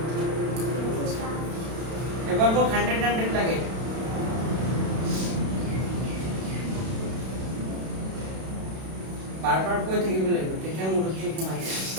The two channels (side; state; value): left; late; 32 ms